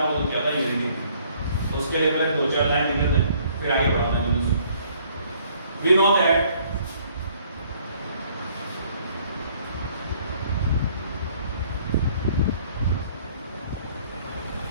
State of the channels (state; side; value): inverted; both; correlation -0.61